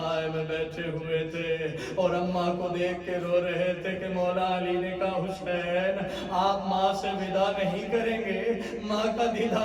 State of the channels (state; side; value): identical; both; correlation 1.00